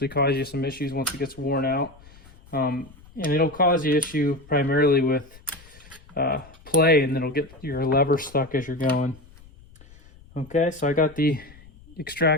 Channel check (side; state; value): left; noise; rumble, 23 dB below the sound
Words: cause you some issues once it gets worn out. And it'll cause you issue primarily with play, and it'll get your lever stuck as you're going. Okay, so I got the